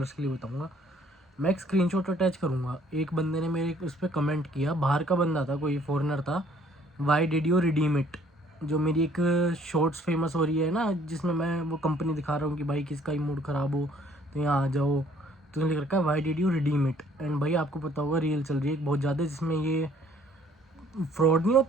के लिए बताऊँगा, मैं एक स्क्रीनशॉट अटैच करूँगा। एक बंदे ने मेरे उस पर कमेंट किया, बाहर का बंदा था, कोई फॉरेनर था। Why did you redeem it? जो मेरी एक शॉर्ट्स फेमस हो रही है ना, जिसमें मैं वो कंपनी दिखा रहा हूँ कि भाई किसका ही मूड ख़राब हो तो यहाँ आ जाओ, तो लिख रखा है why did you redeem it. And भाई आपको पता होगा रील चल रही है बहुत ज़्यादा, जिसमें ये फ्रॉड नहीं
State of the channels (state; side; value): normal; both; correlation 0.60